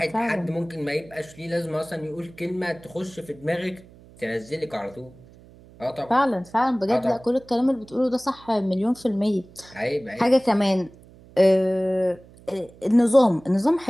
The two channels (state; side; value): noise; right; hum, 23 dB below the sound